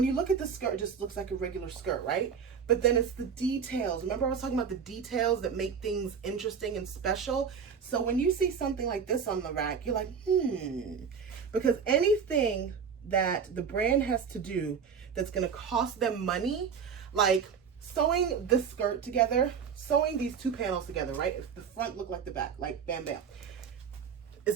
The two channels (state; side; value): quieter; left; 6.7 dB